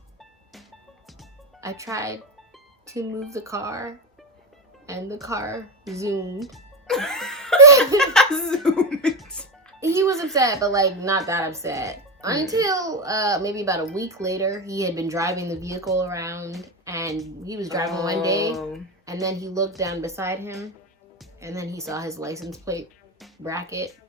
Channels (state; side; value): normal; both; correlation 0.14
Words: I tried to move the car and the car zoomed. He was upset, but like not that upset. Until maybe about a week later, he had been driving the vehicle around and he was driving one day and then he looked down beside him and then he saw his license plate bracket.